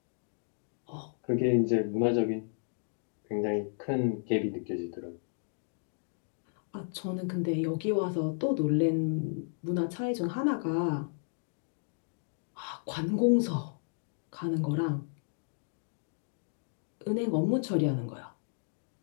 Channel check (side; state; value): right; silent; digital silence